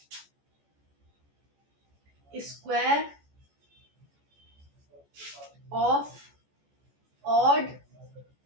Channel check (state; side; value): late; left; 14 ms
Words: square of odd